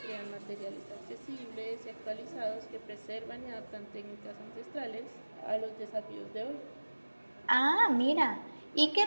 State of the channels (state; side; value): inverted; both; correlation -1.00